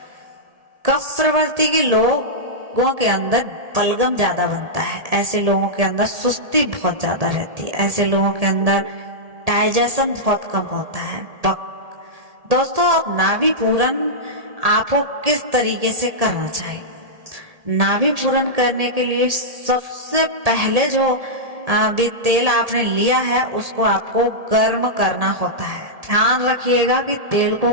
कफ प्रवृत्ति के लोगों के अंदर बलगम ज्यादा बनता है, ऐसे लोगों के अंदर सुस्ती बहुत ज्यादा रहती है, ऐसे लोगों के अंदर डाइजेशन बहुत कम होता है। दोस्तों अब नाभि पूरन आपको किस तरीके से करना चाहिए। नाभि पूरन करने के लिए सबसे पहले जो भी तेल आपने लिया है उसको आपको गर्म करना होता है। ध्यान रखिएगा कि तेल को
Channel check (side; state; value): left; late; 1.8 ms